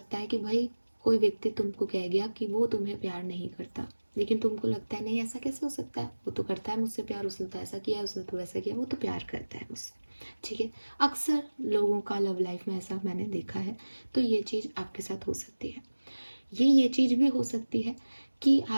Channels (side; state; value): both; inverted; correlation -1.00